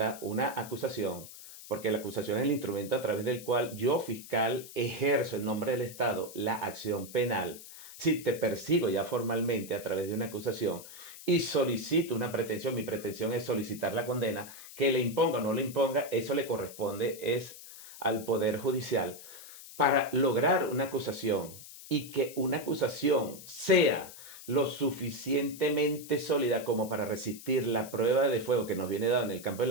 una acusación, porque la acusación es el instrumento a través del cual yo, fiscal, ejerzo en nombre del Estado la acción penal, si te persigo ya formalmente a través de una acusación y solicito una pretensión, mi pretensión es solicitar la condena, que le imponga o no le imponga, eso le corresponde es al Poder Judicial. Para lograr una acusación y que una acusación sea lo suficientemente sólida como para resistir la prueba de fuego que nos viene dada en el campo de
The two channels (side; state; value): left; noise; hiss, 15 dB below the sound